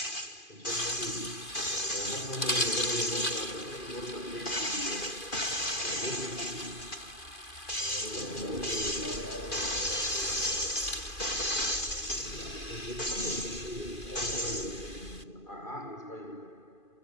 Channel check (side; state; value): right; late; 2.5 ms